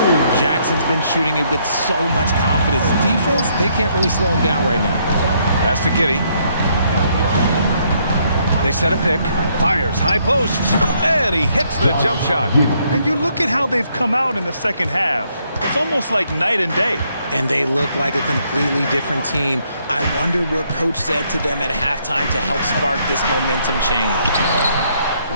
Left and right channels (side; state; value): both; inverted; correlation -0.71